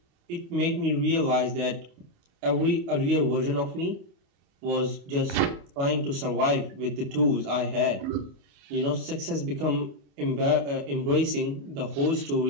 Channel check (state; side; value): late; left; 28 ms